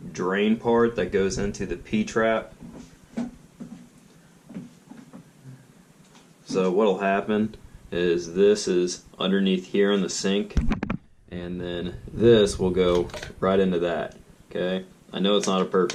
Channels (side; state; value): both; identical; correlation 1.00